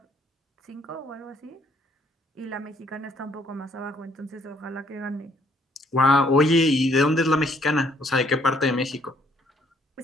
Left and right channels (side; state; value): both; normal; correlation 0.66